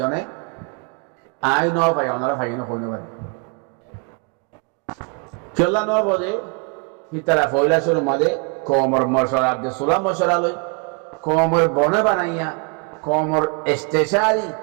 আই ন ভাই অনরা ফাইন কইনো পারে কেলা ন বদে হিতারা ফয়লা শুরু মাদে কমর মশরা আব্দে সুলা মশরা লই কমর বনে বানাইয়া কমর ইস্তেশারি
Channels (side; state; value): left; quieter; 33.5 dB